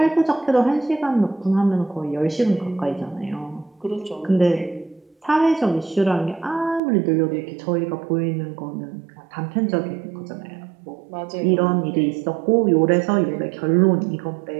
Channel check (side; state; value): left; drops out; at 6.8 s